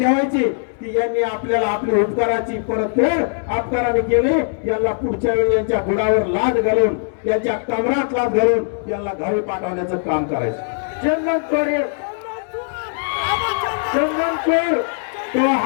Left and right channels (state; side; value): silent; right; digital silence